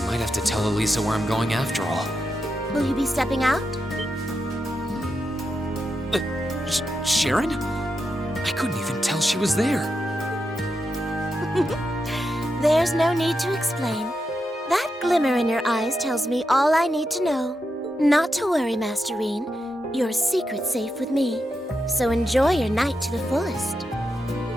might have to tell Elisa where I'm going after all. Will you be stepping out? Sharon? I couldn't even tell she was there. There's no need to explain. That glimmer in your eyes tells me all I need to know. Not to worry, Master Rean. Your secret's safe with me. So enjoy your night to the fullest.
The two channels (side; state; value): both; normal; correlation 0.86